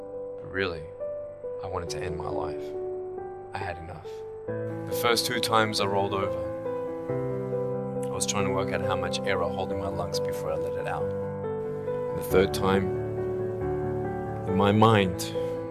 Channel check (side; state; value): both; identical; correlation 1.00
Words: But really, I wanted to end my life. I had enough. The first 2 times I rolled over, I was trying to work out how much air I hold in my lungs before I let it out. And the third time, in my mind,